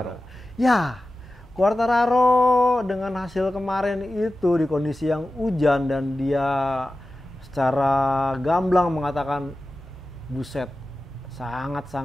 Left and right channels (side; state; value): both; normal; correlation 0.94